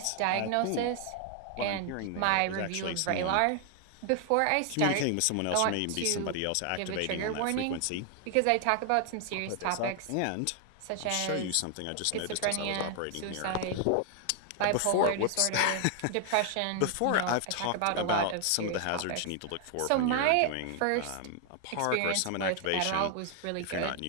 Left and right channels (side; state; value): both; different; correlation 0.00